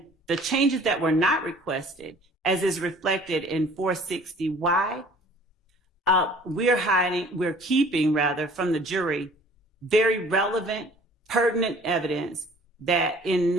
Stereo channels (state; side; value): normal; both; correlation 0.51